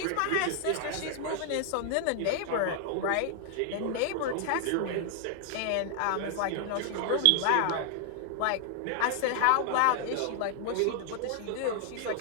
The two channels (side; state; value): both; different; correlation 0.00